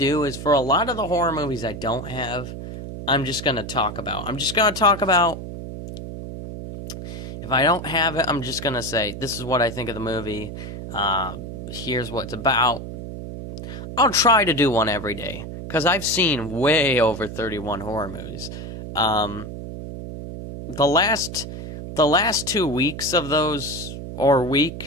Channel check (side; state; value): right; noise; hum, 9 dB below the sound